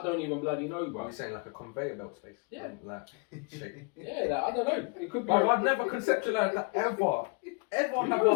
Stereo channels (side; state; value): right; quieter; 33.4 dB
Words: don't even bloody know, bro. Are we saying like a conveyor belt space? Yeah. Like shape. Yeah, like, I don't know. It could be. I've never conceptualized that ever.